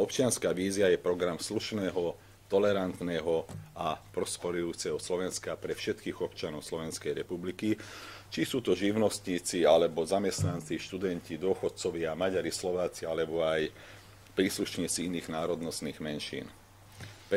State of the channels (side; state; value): both; identical; correlation 1.00